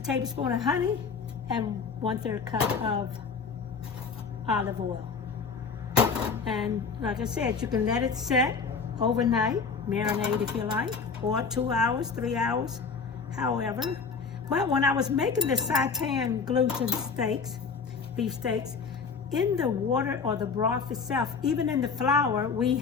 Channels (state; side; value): quieter; right; 5.3 dB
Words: of honey and 1/3 cup of olive oil. And like I said, you can let it set overnight, marinate if you like, or 2 hours, 3 hours, however. But when I was making the Seitan gluten steaks, beef steaks, in the water or the broth itself, even in the flour, we